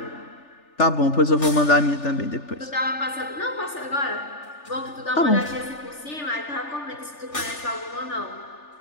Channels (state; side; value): late; right; 3.4 ms